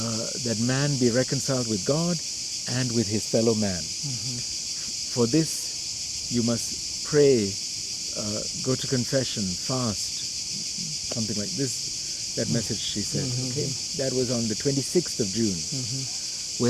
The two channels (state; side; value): identical; both; correlation 1.00